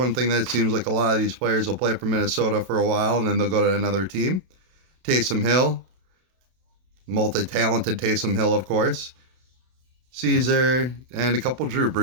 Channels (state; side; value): late; left; 32 ms